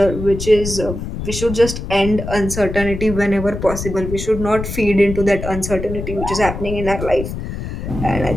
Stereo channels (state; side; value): noise; left; rumble, 7 dB below the sound